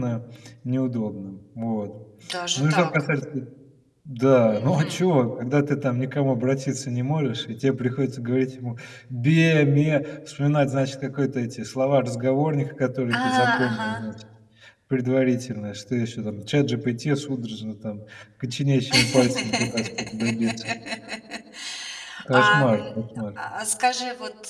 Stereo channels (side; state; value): both; identical; correlation 1.00